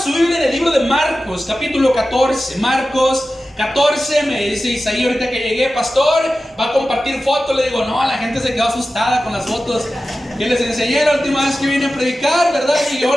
Biblia en el libro de Marcos, capítulo 14. Marcos 14, me dice Isaí ahorita que llegué, pastor, va a compartir fotos. Le digo, no, la gente se quedó asustada con las fotos que les enseñé la última vez que vine a predicar, ¿verdad? Y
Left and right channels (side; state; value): both; normal; correlation 0.94